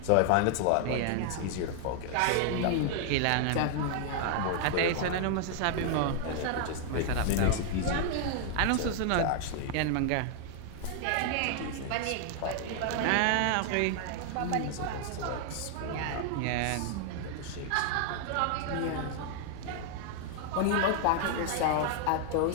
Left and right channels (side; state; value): both; different; correlation 0.00